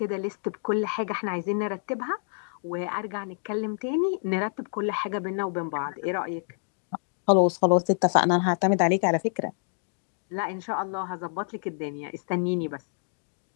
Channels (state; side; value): silent; right; digital silence